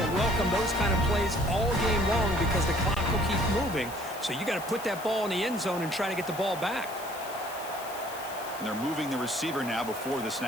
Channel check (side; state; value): left; noise; hiss, 15 dB below the sound